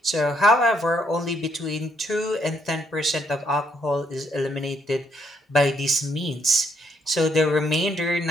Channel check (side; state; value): both; normal; correlation 0.72